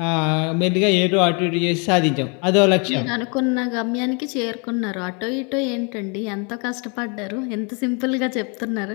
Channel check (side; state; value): right; quieter; 34.2 dB